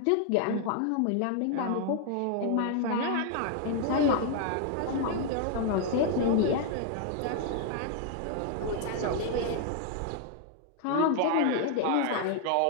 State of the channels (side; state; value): both; different; correlation 0.00